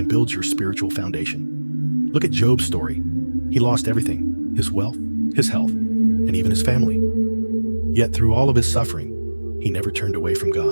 builds your spiritual foundation. Look at Job's story. He lost everything: his wealth, his health, and even his family. Yet through all of his suffering, he never turned away from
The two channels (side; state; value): both; inverted; correlation -1.00